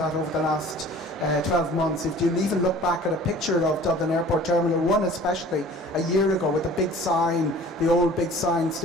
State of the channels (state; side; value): normal; both; correlation 0.47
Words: over the last 12 months. If you even look back at a picture of Dublin Airport Terminal 1 especially a year ago with the big sign, the old big sign